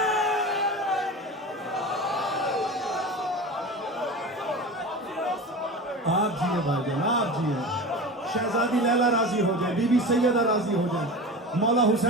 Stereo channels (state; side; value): normal; both; correlation 0.30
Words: آپ جیئے بھائی جان آپ جیئے شہزادی لیلا راضی ہو جائے بی بی سیدہ راضی ہو جائے مولا